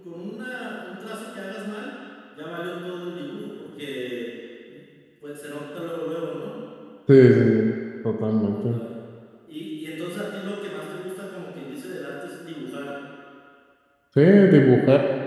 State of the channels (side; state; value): both; identical; correlation 1.00